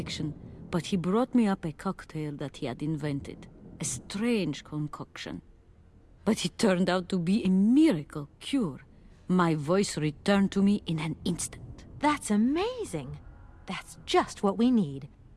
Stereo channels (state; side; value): identical; both; correlation 1.00